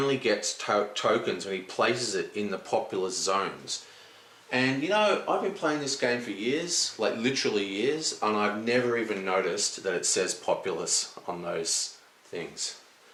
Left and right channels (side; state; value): both; identical; correlation 1.00